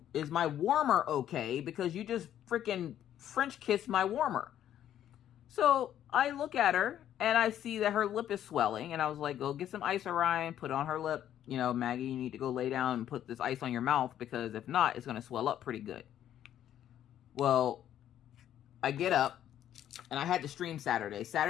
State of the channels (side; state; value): right; quieter; 11.0 dB